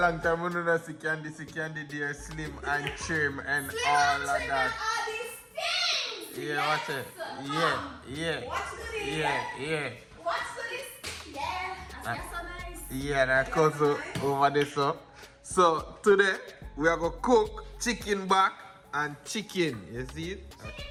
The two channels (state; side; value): identical; both; correlation 1.00